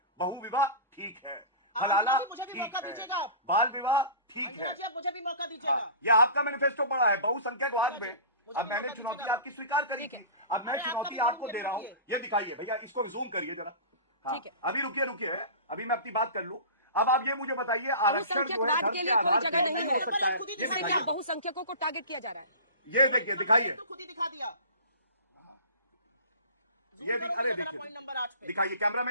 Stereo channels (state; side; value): inverted; both; correlation -0.36